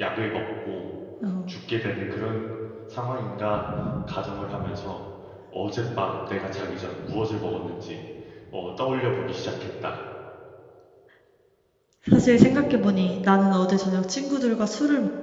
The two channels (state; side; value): identical; both; correlation 1.00